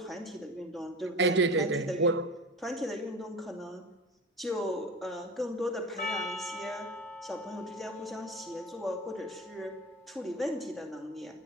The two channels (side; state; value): both; normal; correlation 0.31